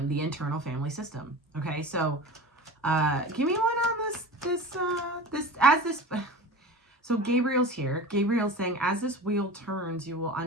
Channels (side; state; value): both; normal; correlation 0.33